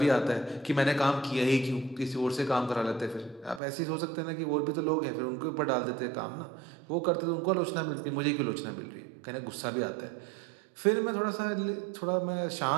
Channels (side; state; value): left; drops out; at 3.6 s